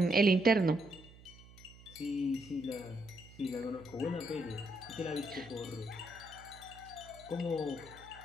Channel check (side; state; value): right; noise; hum, 21 dB below the sound